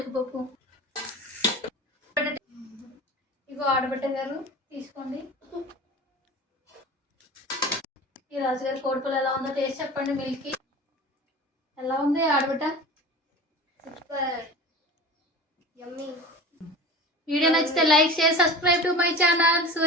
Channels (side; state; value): both; normal; correlation 0.35